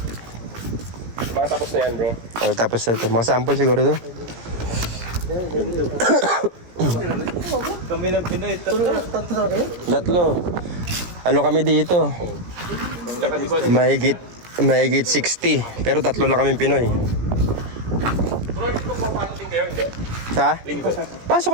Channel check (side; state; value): left; late; 17 ms